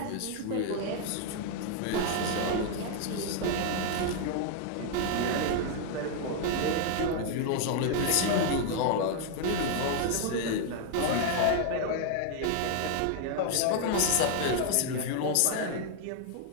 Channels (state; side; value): different; both; correlation 0.00